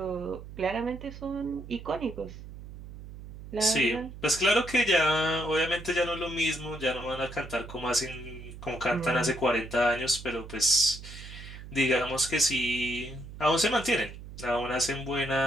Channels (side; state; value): right; noise; hum, 13 dB below the sound